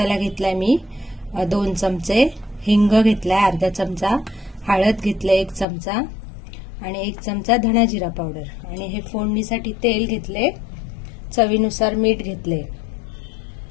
घेतलाय मी 2 चमचे, हिंग घेतलाय अर्धा चमचा, हळद घेतलाय 1 चमचा, आणि 1 चमचा धना जिरा पावडर. आणि हे फोडणीसाठी तेल घेतले, चवीनुसार मीठ घेतले.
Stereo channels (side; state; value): right; drops out; at 5.7 s